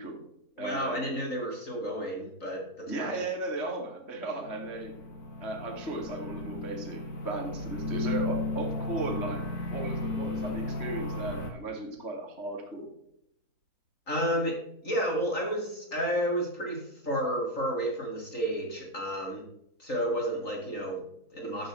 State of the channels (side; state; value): right; late; 3.9 ms